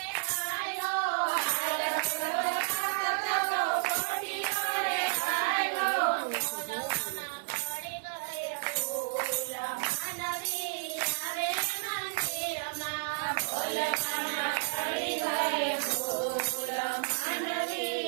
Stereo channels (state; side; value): silent; left; 57 dB below the other